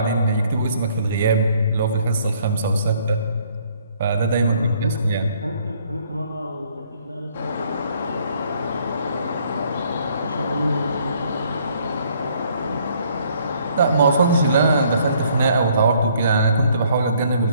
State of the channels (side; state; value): both; inverted; correlation -0.63